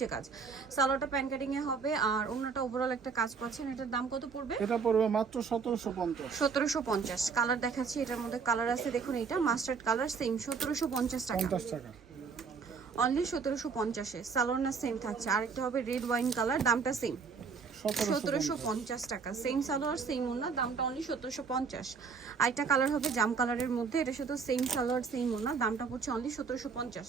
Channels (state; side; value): quieter; left; 5.4 dB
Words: কাজ, সালোয়ারটা প্যান কাটিং এ হবে আর ওড়নাটা ওভারঅল একটা কাজ পাচ্ছেন। এটার দাম কত পড়বে? এটা পড়বে মাত্র 1750। 1750। কালার দেখাচ্ছি, এটার মধ্যে কালার আছে দেখুন, এটা মাস্টার্ড কালার, সেম 1750 টাকা। অনলি 1750-এ। সালোয়ার না সেম থাকছে। আরেকটা হবে রেড ওয়াইন কালার, দামটা সেম 1750 টাকা। সেম সালোয়ার সেম ওড়না, দামটা অনলি 1750। আরেকটা কালার হবে জাম কালারের মধ্যে, এটা শুধু সেম সালোয়ার সেম ওড়না, দামটা পড়ছে অনলি 1750।